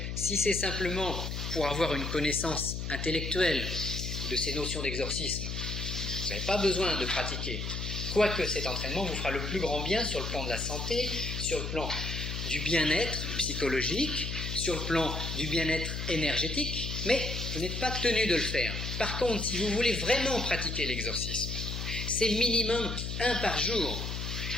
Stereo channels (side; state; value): left; noise; hum, 4 dB below the sound